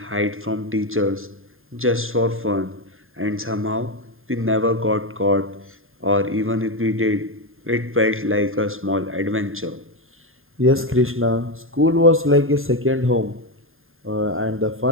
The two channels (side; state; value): left; late; 0.60 ms